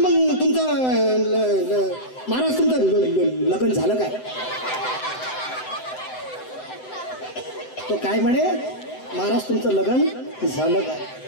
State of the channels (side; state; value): right; late; 7.9 ms